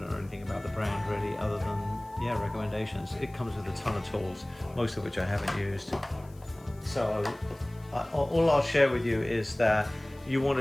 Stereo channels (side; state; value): left; noise; hiss, 28 dB below the sound